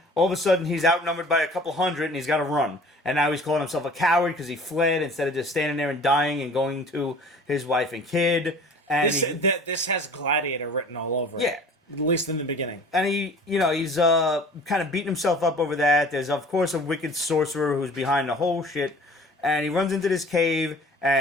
All of a sudden, he's outnumbered by a couple hundred, and he's got to run. And now he's calling himself a coward because he fled instead of just standing there and dying and going to his wife and kid. And This has Gladiator written all over it. Yeah. At least in the beginning. And he's kind of beating himself up over that. There's, of course, a wicked sorcerer who's behind the whole shit. And he runs into this cave,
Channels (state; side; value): normal; both; correlation 0.46